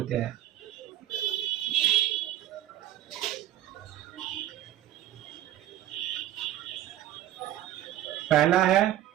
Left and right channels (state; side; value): quieter; left; 12.9 dB